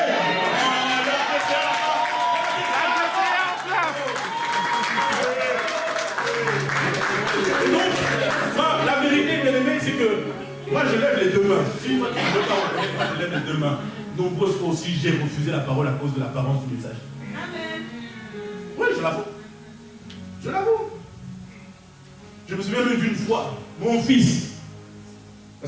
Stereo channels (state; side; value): identical; both; correlation 1.00